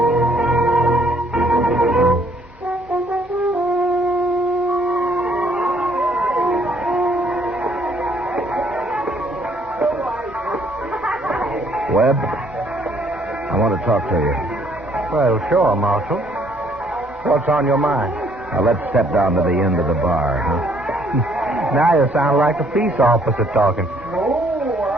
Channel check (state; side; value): normal; both; correlation 0.64